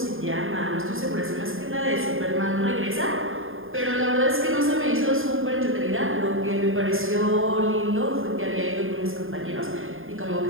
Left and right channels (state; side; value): late; left; 0.59 ms